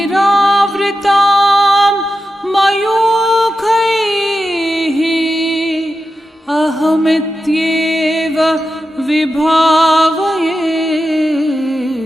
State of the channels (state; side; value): normal; both; correlation 0.90